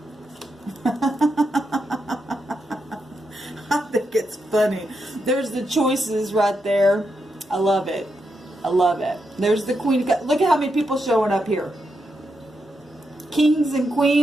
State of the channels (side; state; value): both; normal; correlation 0.84